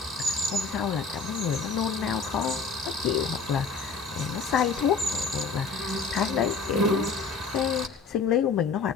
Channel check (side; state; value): right; quieter; 4.8 dB